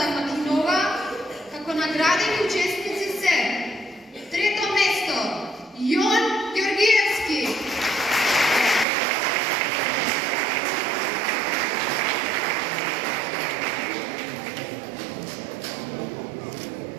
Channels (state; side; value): drops out; left; at 8.8 s